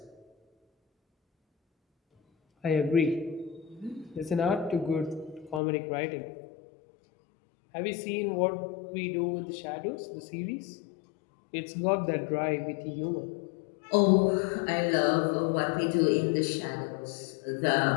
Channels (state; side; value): drops out; right; at 5.6 s